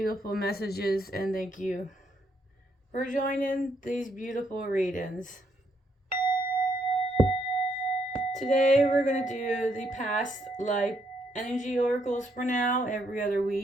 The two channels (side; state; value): both; normal; correlation 0.74